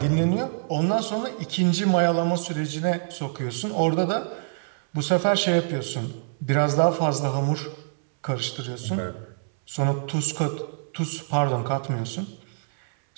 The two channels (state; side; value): silent; left; 61 dB below the other